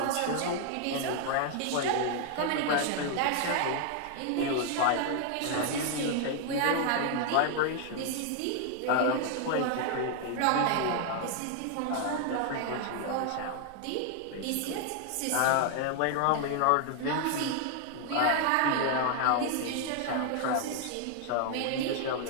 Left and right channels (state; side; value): different; both; correlation 0.00